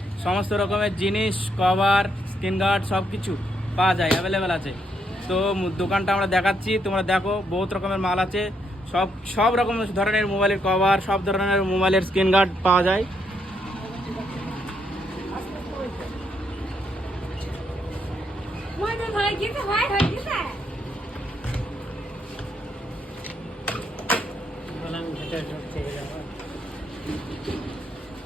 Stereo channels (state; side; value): normal; both; correlation 0.76